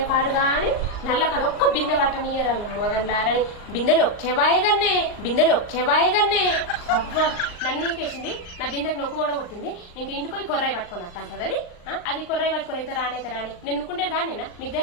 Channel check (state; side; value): late; right; 39 ms